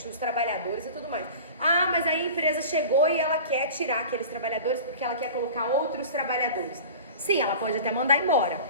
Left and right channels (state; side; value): inverted; both; correlation -0.38